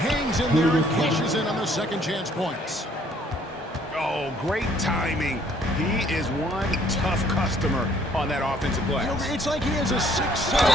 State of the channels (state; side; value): normal; both; correlation 0.62